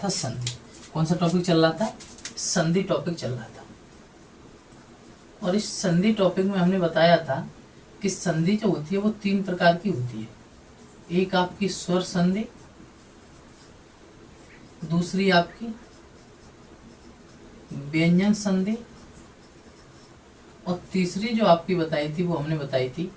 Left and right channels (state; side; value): identical; both; correlation 1.00